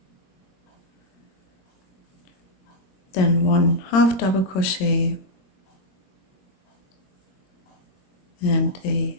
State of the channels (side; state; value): right; late; 22 ms